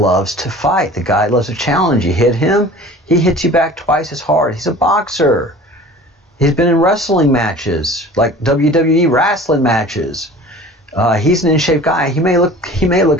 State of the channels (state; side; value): normal; both; correlation 0.43